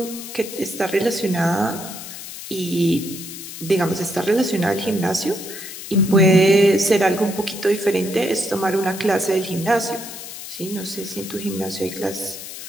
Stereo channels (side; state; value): left; noise; hiss, 11 dB below the sound